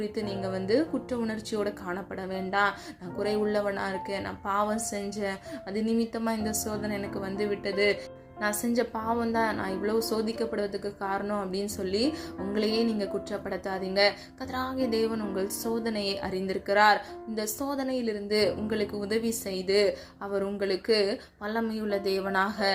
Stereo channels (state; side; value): identical; both; correlation 1.00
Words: நீங்க குற்ற உணர்ச்சியோட காணப்பட வேண்டாம். நான் குறை உள்ளவனா இருக்கேன், நான் பாவம் செஞ்சேன், அது நிமித்தமா இந்த சோதனை எனக்கு விட்டது, நான் செஞ்ச பாவம் தான் நான் இவ்வளவு சோதிக்கப்படுவதற்கு காரணம் அப்படின்னு சொல்லி உங்களையே நீங்க குற்றப்படுத்தாதீங்க. கர்த்தராகிய தேவன் உங்கள் சோதனையை அறிந்திருக்கிறார். இந்த சோதனையிலிருந்து உங்களுக்கு உதவி செய்து அவர் உங்களுக்கு வல்லமையுள்ள தேவனாக